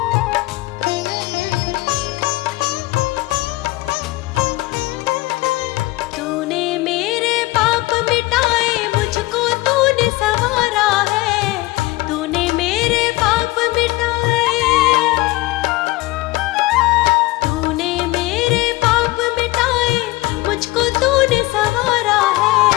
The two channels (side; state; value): right; quieter; 20.1 dB